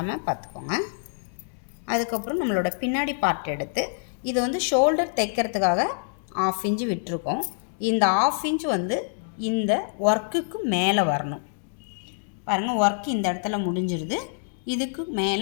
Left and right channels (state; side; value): silent; right; digital silence